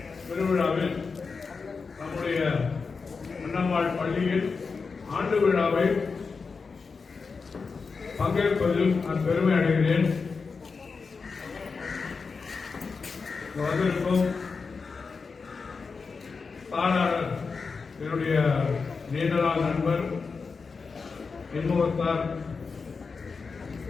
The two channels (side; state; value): right; quieter; 4.8 dB